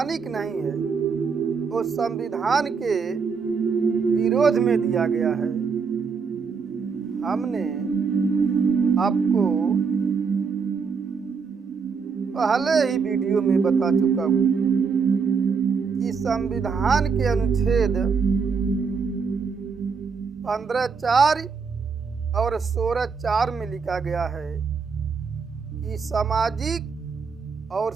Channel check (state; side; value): quieter; left; 5.5 dB